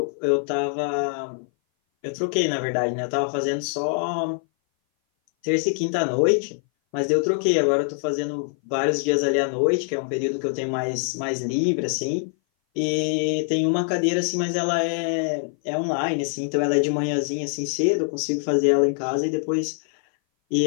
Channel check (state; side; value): silent; right; 58 dB below the other